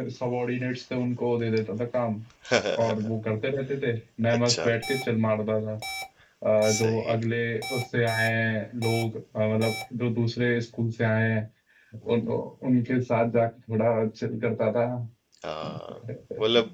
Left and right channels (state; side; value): identical; both; correlation 1.00